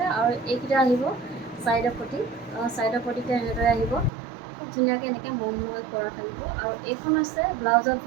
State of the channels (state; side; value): drops out; left; at 4.1 s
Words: আৰু এইকেইটা আহিব চাইডৰ পটি। চাইডৰ পটিতে এনেদৰে আহিব, খুব ধুনীয়াকৈ এনেকৈ মৰমলৈ কৰা থাকিব। আৰু এইখন হৈছে ব্লাউজৰ